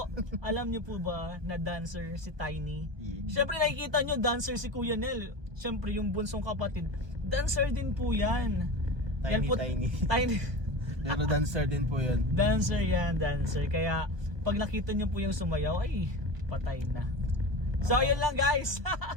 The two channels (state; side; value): late; left; 1.2 ms